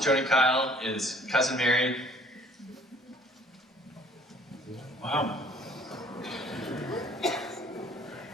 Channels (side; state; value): both; normal; correlation 0.56